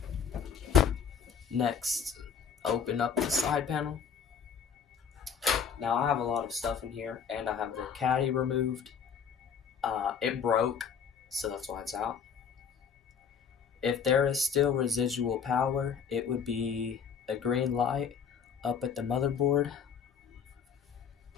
Next, open up the side panel. Now I have a lot of stuff in here and I have the caddy removed. It broke, so that's why it's out. If there is still residual power, it would be a green light up at the motherboard.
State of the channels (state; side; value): quieter; right; 7.0 dB